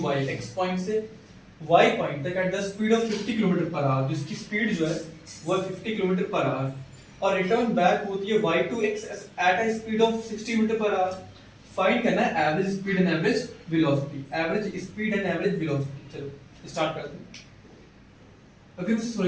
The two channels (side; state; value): both; identical; correlation 1.00